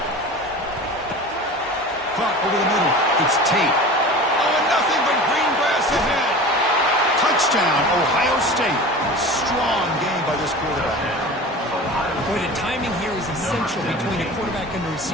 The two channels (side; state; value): both; normal; correlation 0.36